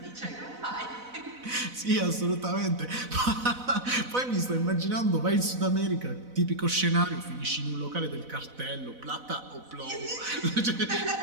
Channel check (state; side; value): late; left; 4.0 ms